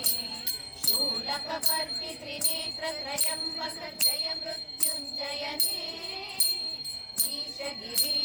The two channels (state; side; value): identical; both; correlation 1.00